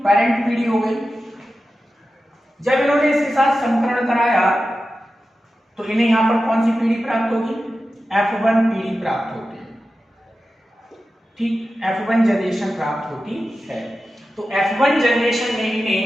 पीढ़ी हो गई। जब इन्होंने इसके साथ संकरण कराया तो इन्हें यहां पर कौन सी पीढ़ी प्राप्त होगी? F1 पीढ़ी प्राप्त होती है। ठीक, F1 जनरेशन प्राप्त होती है। तो F1 जनरेशन में इन्हें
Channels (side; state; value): both; normal; correlation 0.92